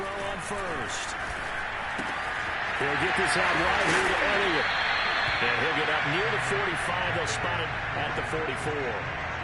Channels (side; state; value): both; identical; correlation 1.00